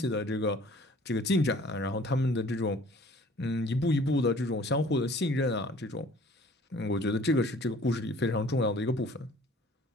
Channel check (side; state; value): both; normal; correlation 0.52